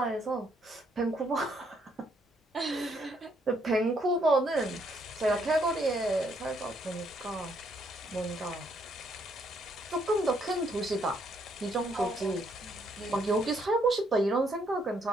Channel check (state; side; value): normal; both; correlation 0.71